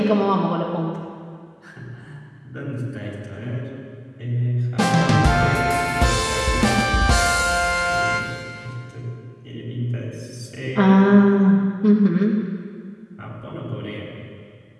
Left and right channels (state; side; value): identical; both; correlation 1.00